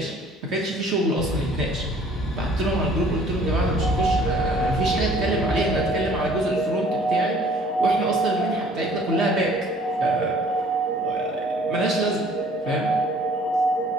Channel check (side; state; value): both; normal; correlation 0.55